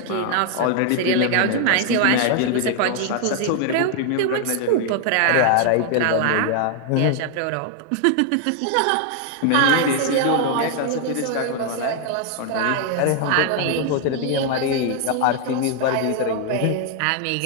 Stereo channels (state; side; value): different; both; correlation 0.00